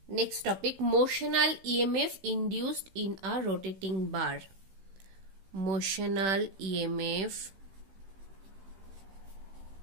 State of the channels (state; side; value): late; left; 16 ms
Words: next topic, motional EMF induced in a rotating bar. Motional EMF